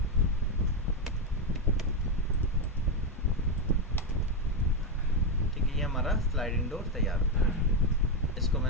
ठीक है, ये हमारा स्लाइडिंग डोर तैयार हो गया। इसको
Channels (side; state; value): both; normal; correlation 0.07